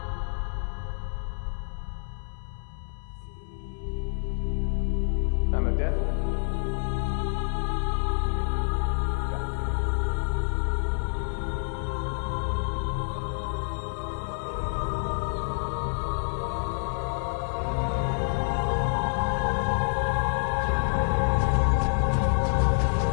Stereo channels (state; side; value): silent; right; 60 dB below the other